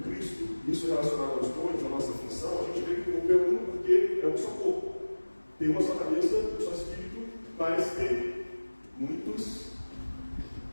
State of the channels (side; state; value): both; inverted; correlation -1.00